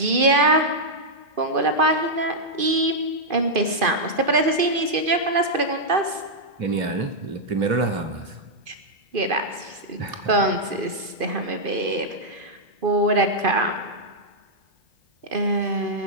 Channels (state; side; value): late; left; 2.5 ms